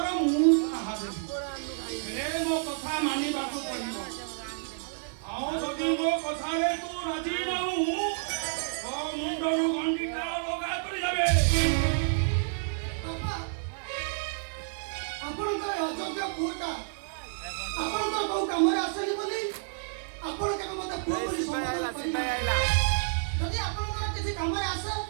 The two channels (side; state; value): left; silent; 58 dB below the other